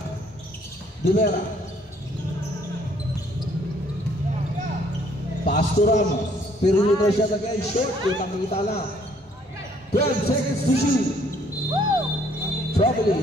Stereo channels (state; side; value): normal; both; correlation 0.63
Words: Pass to Ramos. Perimeter shot again. Short. Kita lang. 12 seconds to shoot.